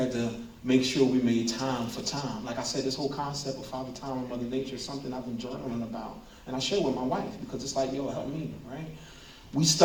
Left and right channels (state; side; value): identical; both; correlation 1.00